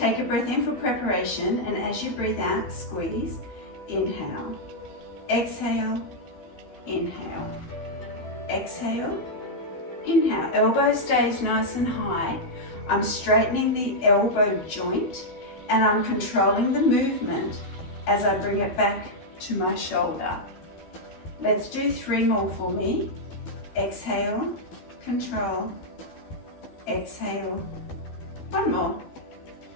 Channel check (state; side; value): late; right; 12 ms